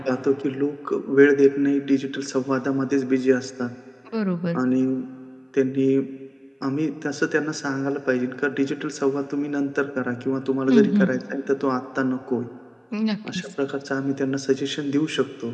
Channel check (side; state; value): both; identical; correlation 1.00